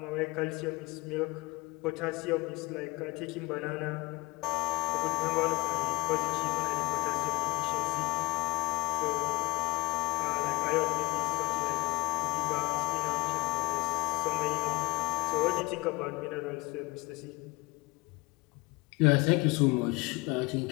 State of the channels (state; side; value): quieter; right; 20.7 dB